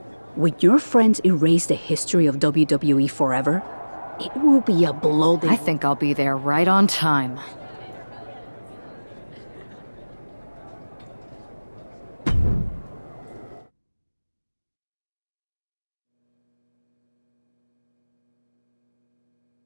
When your friends erase the history of WWE forever, it will be a blow they... I think I'll be there right on time.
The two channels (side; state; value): both; inverted; correlation -1.00